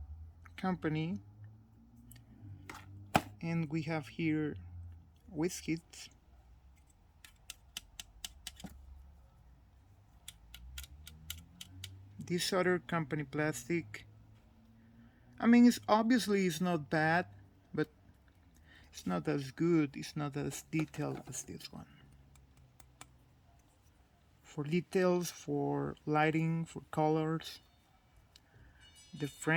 company, and we have here Wizkids. This other company plastic, I mean, it's not bad, but it's not as good, it's not as detailed as this one. For details, for lighting, for colors, the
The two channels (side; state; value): both; identical; correlation 1.00